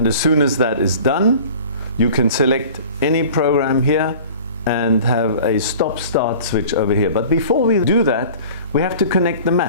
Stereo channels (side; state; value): both; inverted; correlation -0.43